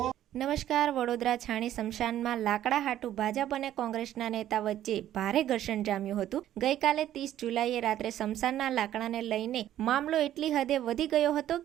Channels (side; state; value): left; quieter; 12.2 dB